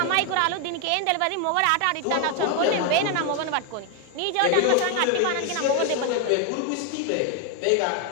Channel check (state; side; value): different; both; correlation 0.01